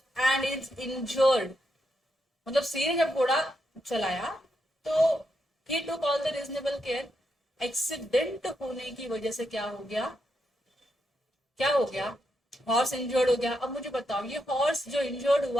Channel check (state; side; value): normal; both; correlation 0.82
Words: and is injured. मतलब C ने जब घोड़ा चलाया तो he took all the reasonable care. Accident होने की वजह से क्या हो गया? क्या हो गया? हॉर्स इंजर्ड हो गया। अब मुझे बताओ, ये हॉर्स जो इंजर्ड